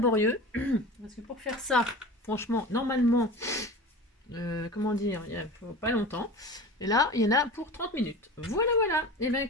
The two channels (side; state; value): both; normal; correlation 0.34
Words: Parce que pour faire ça, franchement, normalement, comment dire, il ne faut pas longtemps. Et là, il y en a pour 30 minutes. Voilà, voilà. Et bien,